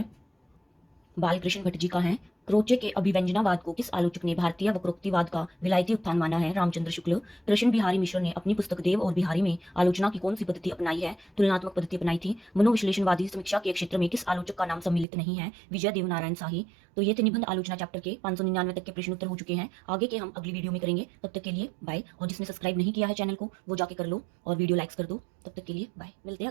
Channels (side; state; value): left; drops out; at 15.1 s